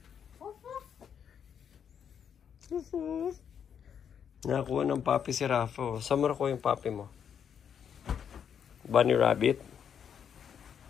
Nakakuha ng papi si Rafa. Saan mo nakuha yung papi mo? Bunny rabbit?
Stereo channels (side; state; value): right; quieter; 8.0 dB